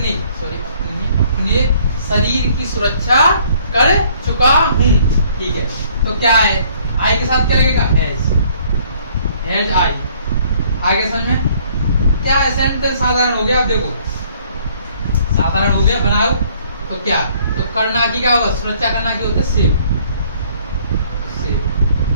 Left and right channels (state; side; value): inverted; both; correlation -0.60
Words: शरीर की सुरक्षा कर चुका हूँ? ठीक है, तो क्या है, आई के साथ क्या लगेगा, हैज आई। आगे समझ में क्या है, सेंटेंस साधारण हो गया। अब देखो साधारण हो गया, बनाओ तो क्या, तो करना की क्या होगा, सुरक्षा करना की होता है सेव।